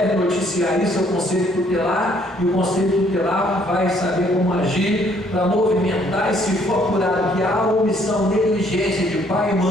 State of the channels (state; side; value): normal; both; correlation 0.64